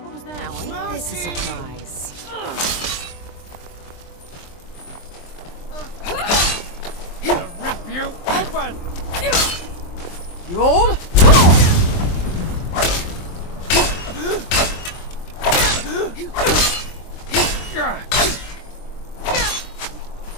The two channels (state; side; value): late; right; 23 ms